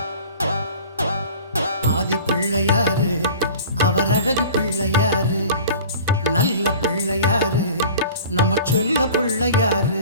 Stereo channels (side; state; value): both; inverted; correlation -0.42